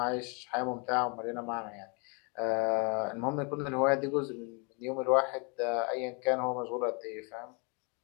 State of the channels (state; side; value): quieter; right; 33.8 dB